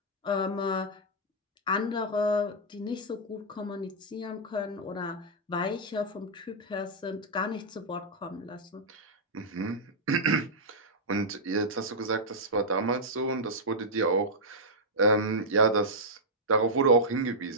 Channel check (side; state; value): both; normal; correlation -0.08